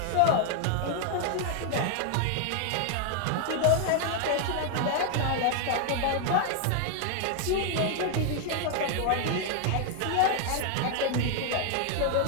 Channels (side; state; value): both; different; correlation 0.00